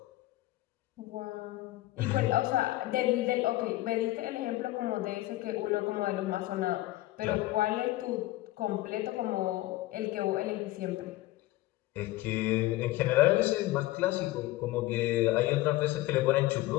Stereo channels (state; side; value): quieter; right; 17.4 dB